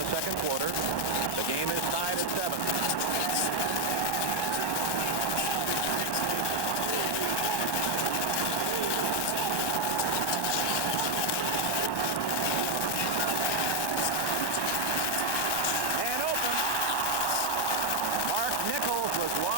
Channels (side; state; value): right; late; 1.1 ms